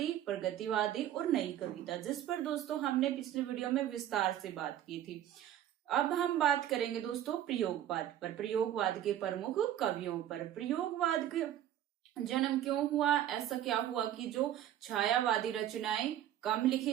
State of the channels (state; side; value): quieter; left; 11.6 dB